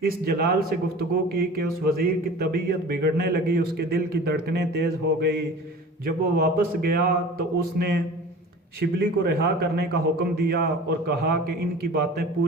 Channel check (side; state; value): both; normal; correlation 0.40